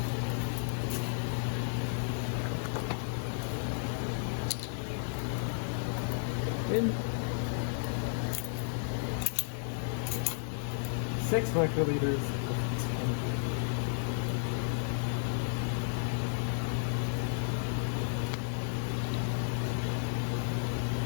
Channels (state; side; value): silent; right; 56 dB below the other